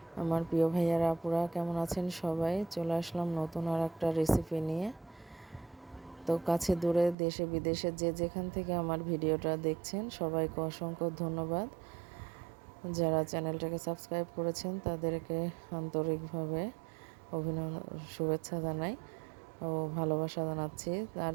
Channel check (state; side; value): drops out; left; at 7.2 s